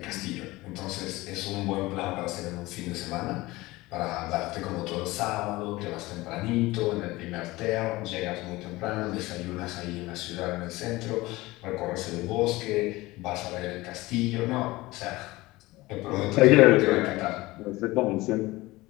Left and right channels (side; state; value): right; quieter; 20.0 dB